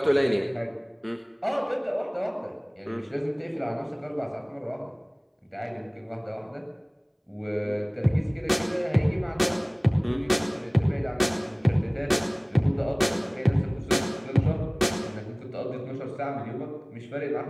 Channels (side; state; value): both; identical; correlation 1.00